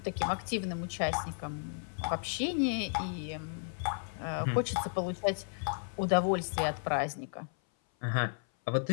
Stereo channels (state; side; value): silent; right; 55 dB below the other